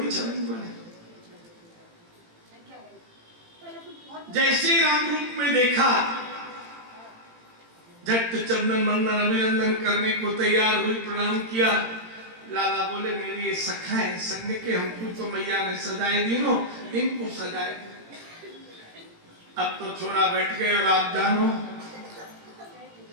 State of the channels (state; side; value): late; left; 18 ms